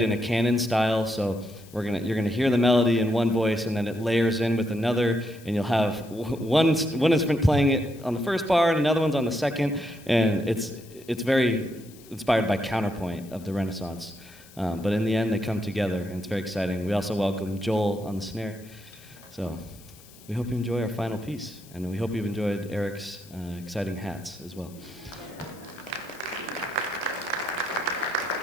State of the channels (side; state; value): left; noise; hiss, 23 dB below the sound